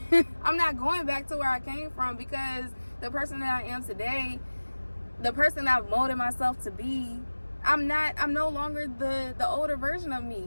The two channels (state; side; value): inverted; both; correlation -1.00